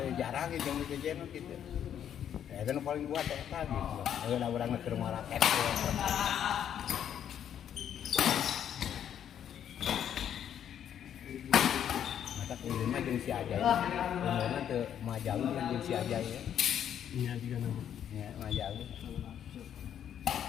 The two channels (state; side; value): quieter; right; 9.5 dB